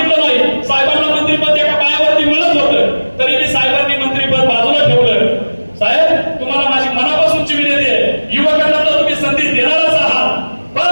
नाही, साहेबांना मंत्रिपद एका पायावरती मिळत होतं, तरी मी साहेबांनी मंत्रिपद बाजूला ठेवलं. साहेब, तुम्हाला माझी मनापासूनची विनंती आहे, युवकांना तर तुम्ही संधी देणारच आहात,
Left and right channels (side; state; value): both; inverted; correlation -1.00